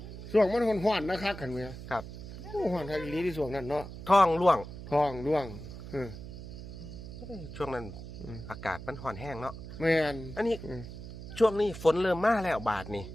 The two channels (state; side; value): noise; right; hum, 11 dB below the sound